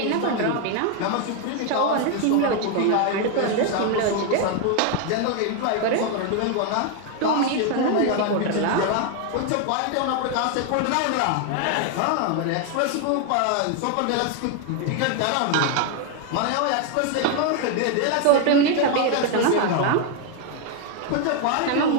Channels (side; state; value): both; different; correlation 0.01